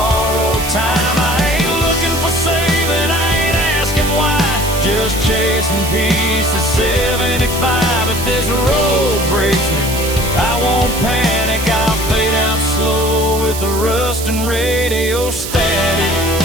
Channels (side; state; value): right; noise; hiss, 8 dB below the sound